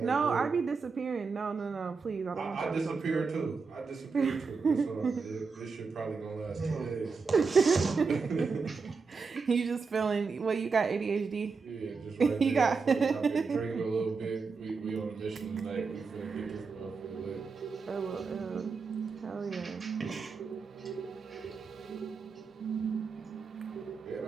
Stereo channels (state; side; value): quieter; left; 4.8 dB